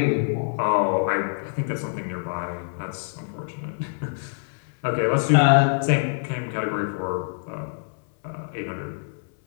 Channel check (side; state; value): right; silent; 62 dB below the other